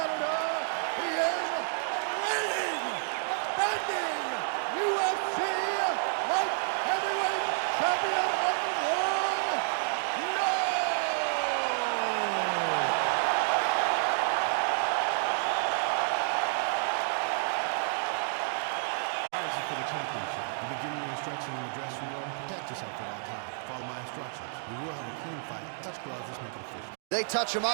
he is reigning, defending UFC Light Heavyweight Champion of the world, For the championship, you begin your instruction in the dressing room. Protect yourself at all times. Follow my instructions. We will have a clean fight. Touch gloves. Let's make it official. They touch him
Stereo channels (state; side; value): silent; left; digital silence